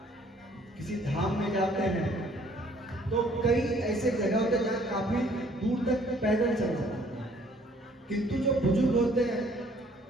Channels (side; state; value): both; normal; correlation 0.60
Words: किसी धाम में जाते हैं तो कई ऐसे जगह होते हैं जहाँ काफी दूर तक पैदल चल जाते हैं, किंतु जो बुजुर्ग होते हैं